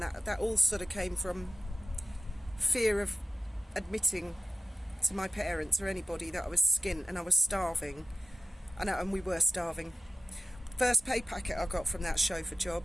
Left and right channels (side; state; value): both; normal; correlation 0.91